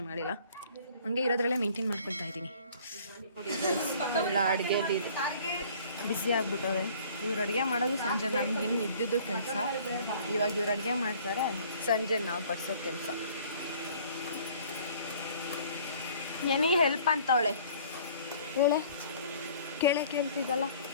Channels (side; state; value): both; inverted; correlation -0.53